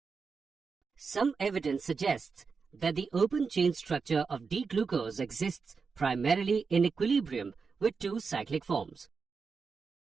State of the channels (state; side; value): quieter; left; 5.1 dB